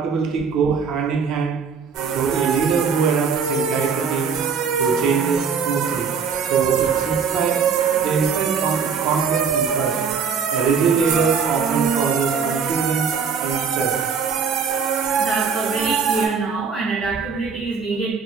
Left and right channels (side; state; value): left; quieter; 6.0 dB